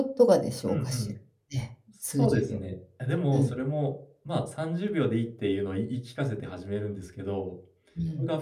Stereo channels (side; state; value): both; identical; correlation 1.00